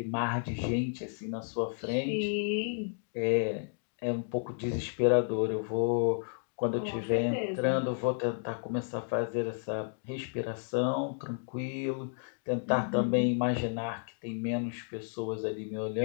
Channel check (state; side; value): silent; right; digital silence